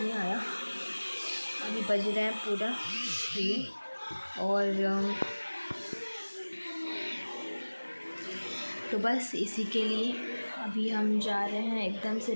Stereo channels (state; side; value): inverted; both; correlation -1.00